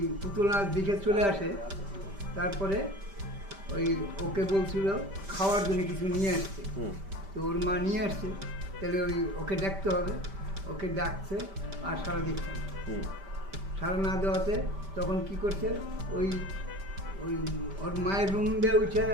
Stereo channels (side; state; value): left; late; 5.1 ms